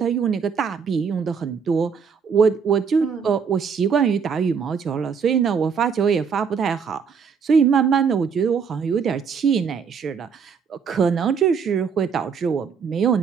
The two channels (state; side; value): quieter; left; 6.3 dB